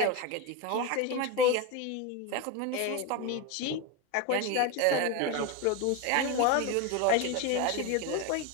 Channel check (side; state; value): both; different; correlation 0.04